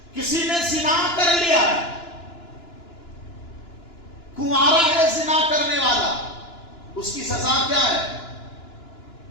کسی نے زنا کر لیا، کنوارا ہے زنا کرنے والا، اس کی سزا کیا ہے؟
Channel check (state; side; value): late; right; 2.9 ms